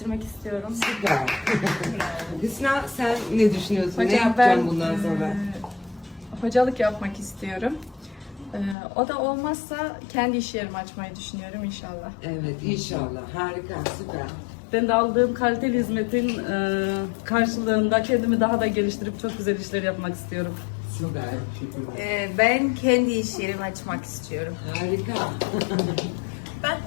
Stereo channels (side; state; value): right; drops out; at 8.8 s